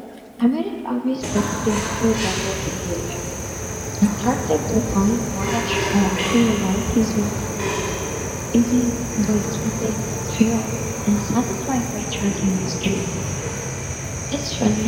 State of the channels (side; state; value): both; identical; correlation 1.00